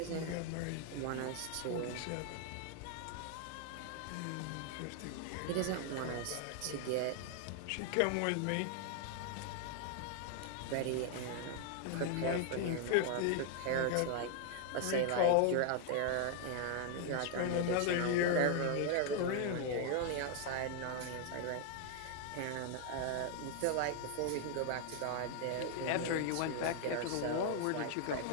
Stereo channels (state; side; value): different; both; correlation 0.00